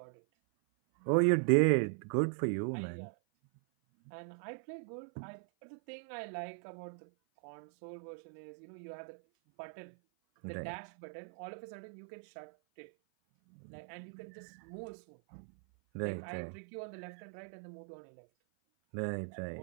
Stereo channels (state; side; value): silent; left; 52 dB below the other